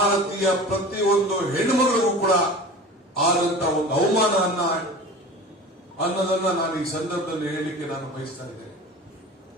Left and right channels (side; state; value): both; normal; correlation 0.37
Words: ಪ್ರತಿಯೊಂದು ಹೆಣ್ಣುಮಗಳಿಗೂ ಕೂಡ ಆದಂತ ಒಂದು ಅವಮಾನ ಅನ್ನೋದನ್ನ ನಾನು ಈ ಸಂದರ್ಭದಲ್ಲಿ ಹೇಳಲಿಕ್ಕೆ ನಾನು ಬಯಸ್ತಾ ಇದ್ದೇನೆ.